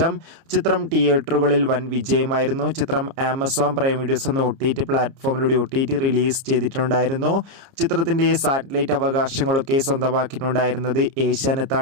ചിത്രം തിയേറ്ററുകളിൽ വൻ വിജയമായിരുന്നു. ചിത്രം ആമസോൺ പ്രൈം വീഡിയോസ് എന്ന OTT പ്ലാറ്റ്ഫോമിലൂടെ OTT റിലീസ് ചെയ്തിട്ടുണ്ടായിരുന്നു. ചിത്രത്തിൻ്റെ സാറ്റലൈറ്റ് അവകാശങ്ങളൊക്കെ സ്വന്തമാക്കിയിട്ടുണ്ടായിരുന്നത്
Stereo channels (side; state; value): left; late; 30 ms